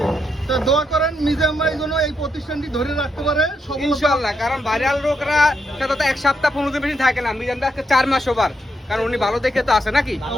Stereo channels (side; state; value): both; normal; correlation 0.80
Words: তো দোয়া করেন মিজান ভাই যেন এই প্রতিষ্ঠানটি ধরে রাখতে পারে সফলতা। ইনশাআল্লাহ, কারণ ভাইরাল লোকরা সাথে তো এক সপ্তাহ 15 দিন বেশি থাকে না, মিজান ভাই আজকে 4 মাস ওভার, কারণ উনি ভালো দেখে তো আসে নাকি।